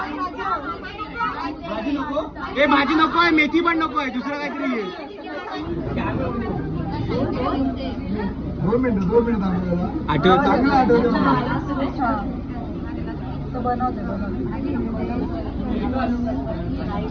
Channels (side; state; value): both; identical; correlation 1.00